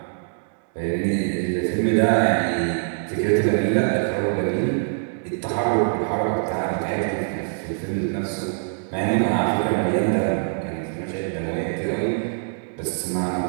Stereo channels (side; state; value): left; silent; digital silence